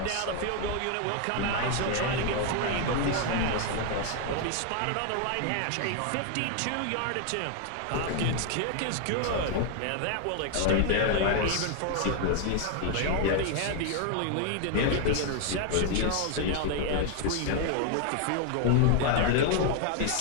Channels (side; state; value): both; different; correlation 0.00